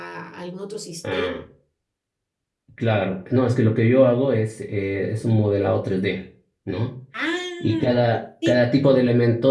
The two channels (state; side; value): identical; both; correlation 1.00